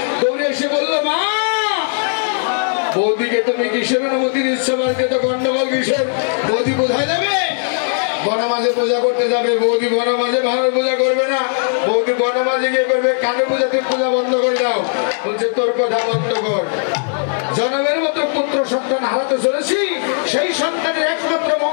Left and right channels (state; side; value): silent; right; 68 dB below the other